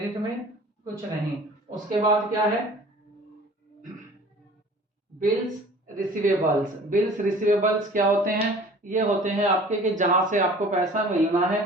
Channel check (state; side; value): normal; both; correlation 0.46